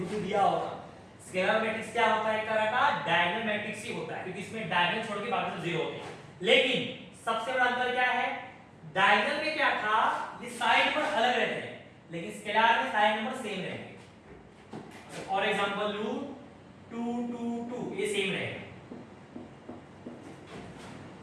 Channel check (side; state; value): both; identical; correlation 1.00